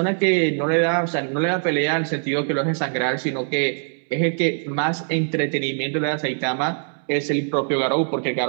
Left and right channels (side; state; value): left; silent; 63 dB below the other